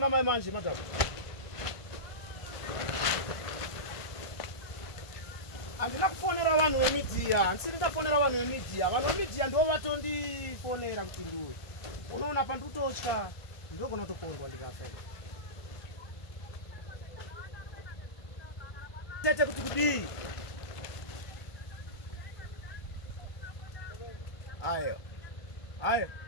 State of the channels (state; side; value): late; right; 1.5 ms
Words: mai manje madam handina kufonera vanhu vemidiya handisiri ndafonera vanhu vemidiya vanhu vemidiya ndo vatondifonera kuti ndiwe unoona pandikutotya ndogona kutokondwa ndikafa tete kuti kudii ayo aiwa